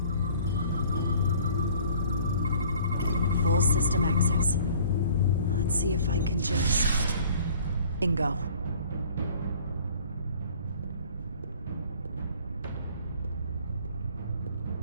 Full system access. Let's see if I can just... Bingo.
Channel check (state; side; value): inverted; both; correlation -0.52